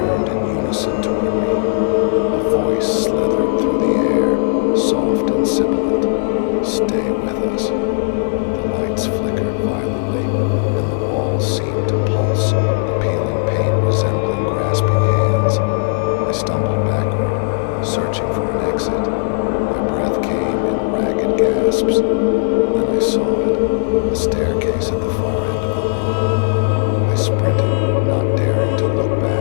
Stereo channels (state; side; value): silent; right; digital silence